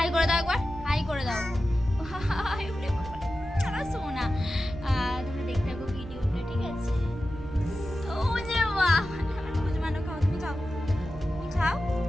করে দাও একবার, হাই করে দাও। হাই উঠে বাবা, আমার সোনা। তোমরা দেখতে থাকো ভিডিওটা, ঠিক আছে? ও যে বাহ, আমার খুঁজমানো। খাও, তুমি খাও, তুমি খাও,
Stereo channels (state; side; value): normal; both; correlation 0.93